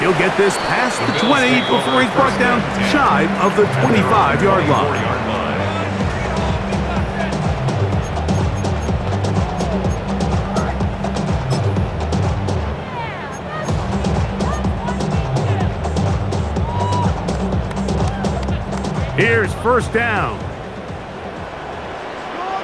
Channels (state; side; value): identical; both; correlation 1.00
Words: He'll get this past the 20 before he's brought down shy of the 25-yard line. first down.